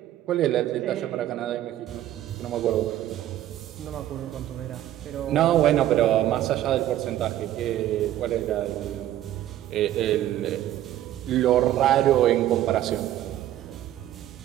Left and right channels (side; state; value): left; quieter; 12.9 dB